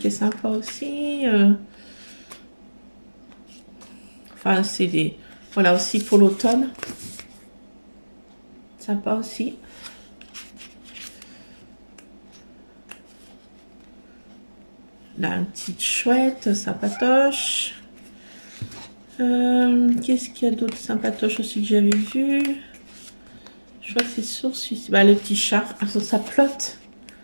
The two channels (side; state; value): both; inverted; correlation -1.00